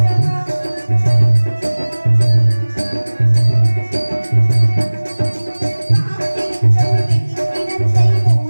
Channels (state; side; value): inverted; both; correlation -1.00